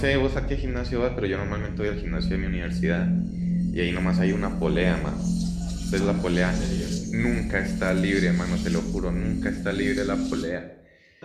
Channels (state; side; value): identical; both; correlation 1.00